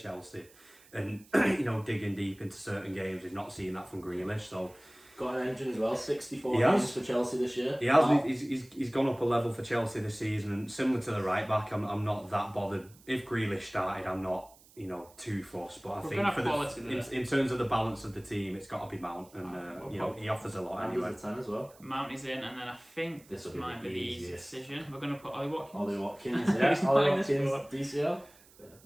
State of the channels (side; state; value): right; noise; hiss, 26 dB below the sound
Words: and digging deep into certain games. We've not seen that from Grealish. So Got an engine as well. 64 He has. games for Chelsea this year. he has. Wow. He's gone up a level for Chelsea this season, and similar to the right back, I'm not that bothered. If Grealish started, I'm not too fussed. But I We're think gonna for have quality there. in terms of the balance of the team, it's got to be Mount, and he offers a lot And anyway. he's a 10 as well. Mount is in, and then I think This this will be might the be the easy easiest. decision. We're going to put Ollie Watkins. Ollie Watkins, yeah. He's Ollie not in this Watkins, squad. DCL.